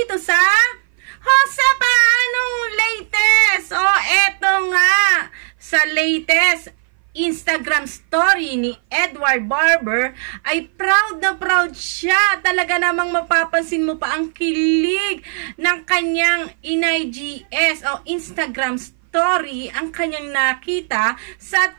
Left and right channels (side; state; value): left; silent; 59 dB below the other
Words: sa Josepa, anong latest? Eto nga, sa latest Instagram story ni Edward Barber ay proud na proud siya. Talaga namang mapapansin mo pa ang kilig ng kanyang IGS o Instagram story ang kanyang nakita sa